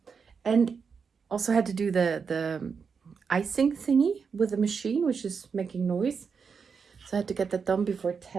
and also had to do the icing thingy with the machine, which is making noise, so I had to get that done before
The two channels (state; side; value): quieter; left; 5.8 dB